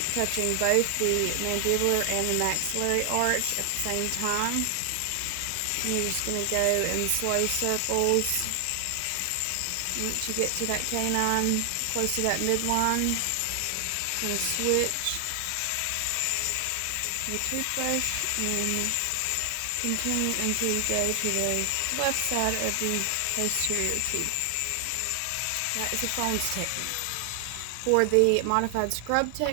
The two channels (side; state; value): both; different; correlation 0.00